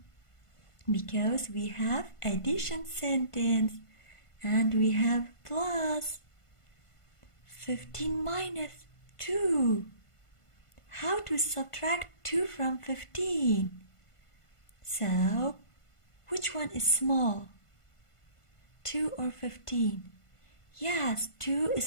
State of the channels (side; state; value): right; late; 1.5 ms